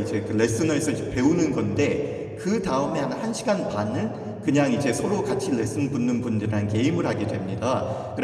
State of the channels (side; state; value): both; identical; correlation 1.00